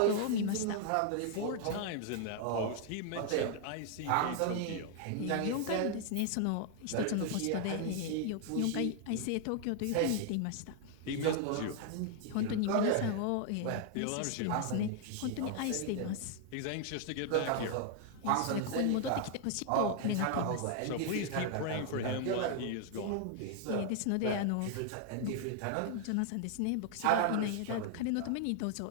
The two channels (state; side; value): different; both; correlation 0.00